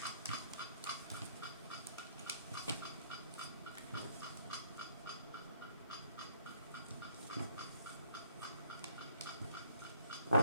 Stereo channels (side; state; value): both; inverted; correlation -0.65